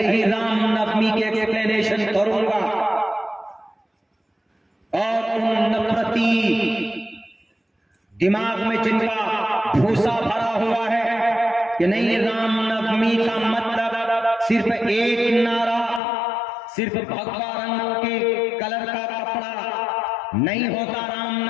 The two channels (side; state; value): right; drops out; at 16.0 s